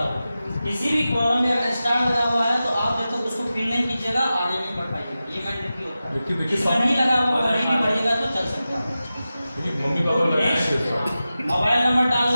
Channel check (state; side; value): inverted; both; correlation -0.94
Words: होगा। किसी भी कॉलम में अगर स्टार लगा हुआ है तो आप जब तक उसको फिल नहीं कीजिएगा आगे नहीं बढ़ पाइएगा, ये मैंडेटरी होता है। इसमें नहीं लगा हुआ कहीं भी बढ़ेगा तो चल सकता है। मम्मी पापा मोबाइल नंबर